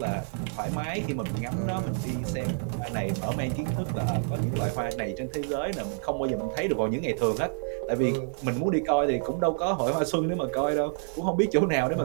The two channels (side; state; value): left; silent; digital silence